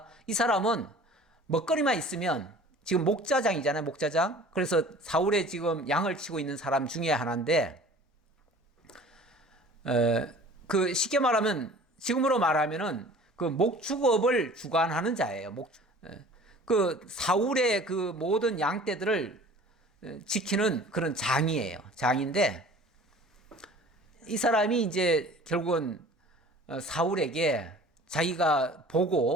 이 사람은 먹거리만 있으면, 지금 목자장이잖아요, 목자장. 그래서 사울의 지금 양을 치고 있는 사람 중에 하나인데, 그 쉽게 말하면, 지금으로 말하면은 그 목축업을 주관하는 자예요. 그 사울의 그 모든 양떼들을 지키는 그런 장이에요. 장인데, 이 사람이 이제 결국은 사울에게 자기가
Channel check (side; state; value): both; normal; correlation 0.46